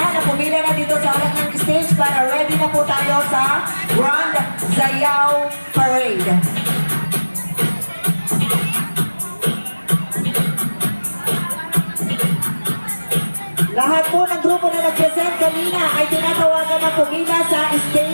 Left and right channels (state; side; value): inverted; both; correlation -1.00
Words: na pumila na dito sa harap ng stage para ready na po tayo sa Grand Sayaw Parade. Lahat po ng grupo na nag-present kanina ay tinatawagan na pumila sa